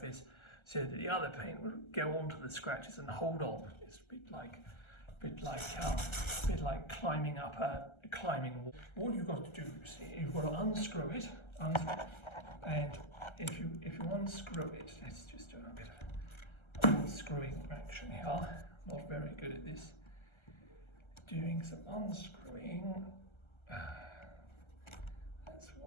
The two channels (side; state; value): right; late; 1.3 ms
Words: so that the other paint will go onto the scratches and hold on. It's a bit like climbing up a climbing wall. What you've got to do, you see, you've got to unscrew it, and if you unscrew it, let's just do a bit of unscrewing action here. Not very good at this. Doing some unscrewing. That's